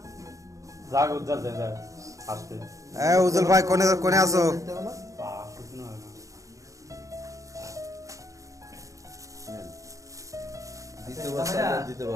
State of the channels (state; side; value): late; left; 0.16 ms